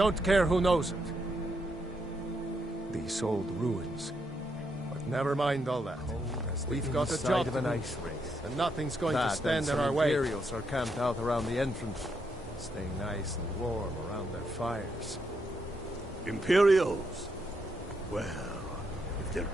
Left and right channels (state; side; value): normal; both; correlation 0.79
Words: care who knows it. These old ruins. But never mind all that. We've got a job to do, and nothing's going to stand in our way. Imperials are camped out around the entrance, staying nice and warm around their fires. Imperials? Well, if they're